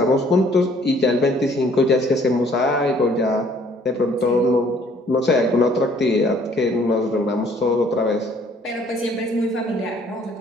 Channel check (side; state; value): both; normal; correlation 0.60